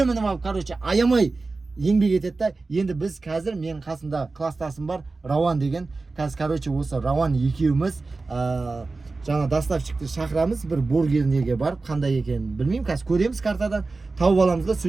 minib olib, короче, ayamay еңбек етеді да. Енді біз қазір менің қасымда класстасым бар, Рауан деген. Қазір, короче, осы Рауан екеуміз жаңа доставщикті шақырамыз, бір бургернеге барып, қандай екенін білмеймін. Қазір көреміз картадан, тауып аламыз да,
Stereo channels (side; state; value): left; quieter; 3.7 dB